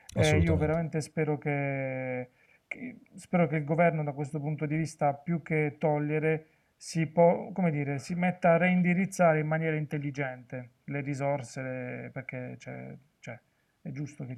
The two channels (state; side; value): identical; both; correlation 1.00